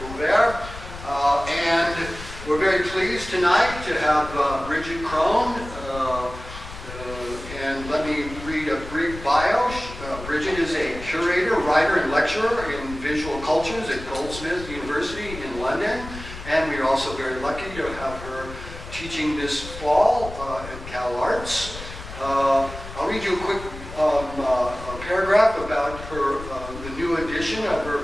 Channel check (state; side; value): noise; left; rumble, 12 dB below the sound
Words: And we're very pleased tonight to have Bridget Crone. And let me read a brief bio. Bridget is a curator, writer, and lecturer in visual cultures at Goldsmiths University in London. And we are also very lucky to have her teaching this fall at CalArts. I'll read you a quick paragraph about her, the new edition of her